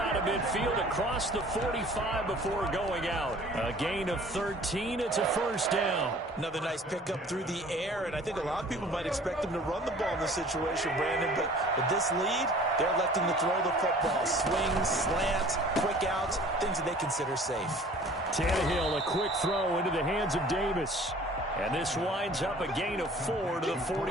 of midfield across the 45 before going out. A gain of 13. It's a first down. Another nice pickup through the air, and I think a lot of people might expect him to run the ball in this situation, Brandon, but with this lead, they're electing to throw the football. Swings, slants, quick outs, things that they consider safe. Tannehill, a quick throw into the hands of Davis. And this winds up a gain of 4 to the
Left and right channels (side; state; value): both; normal; correlation 0.49